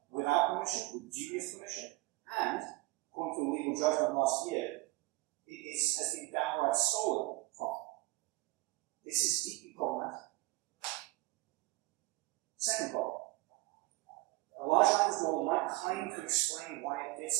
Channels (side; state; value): left; quieter; 21.0 dB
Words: without permission, with dubious permission, and, according to a legal judgment last year, has been downright stolen from. This is deeply problematic. Second problem. A large language model might claim to explain why it did